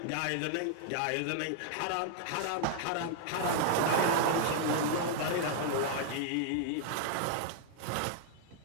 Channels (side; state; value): both; different; correlation 0.00